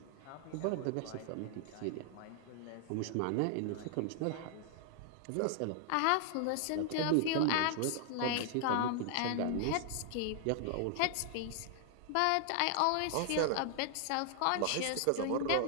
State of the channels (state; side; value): different; both; correlation 0.00